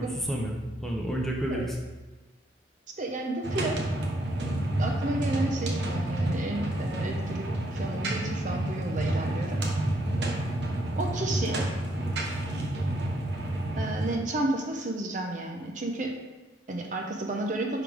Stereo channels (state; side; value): normal; both; correlation 0.72